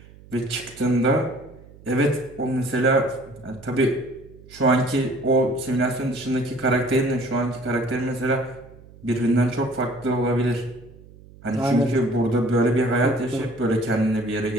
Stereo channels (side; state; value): right; noise; hum, 22 dB below the sound